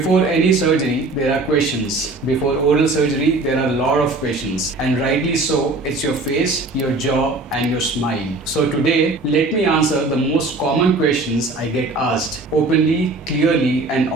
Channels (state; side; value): quieter; left; 3.1 dB